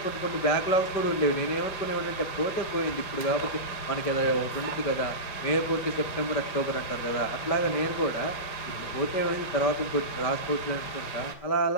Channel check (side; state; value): right; late; 5.0 ms